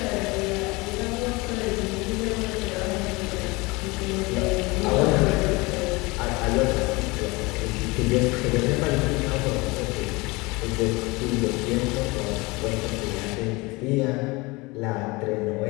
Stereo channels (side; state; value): right; quieter; 24.4 dB